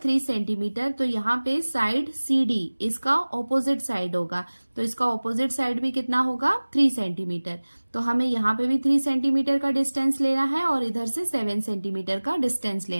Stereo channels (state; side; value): inverted; both; correlation -1.00